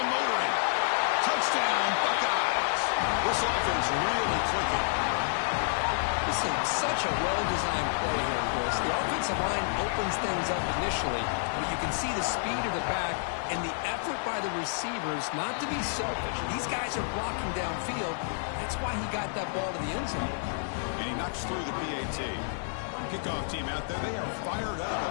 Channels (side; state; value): right; silent; digital silence